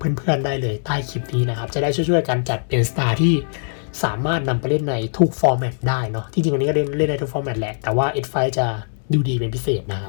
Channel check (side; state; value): right; silent; digital silence